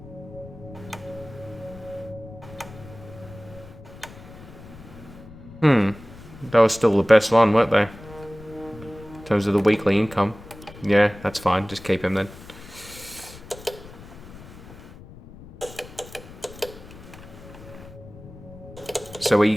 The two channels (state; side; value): noise; left; rumble, 17 dB below the sound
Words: That was still the best one, weren't they? In terms of the weekly income. Yeah, that's fine. Just keep him then. So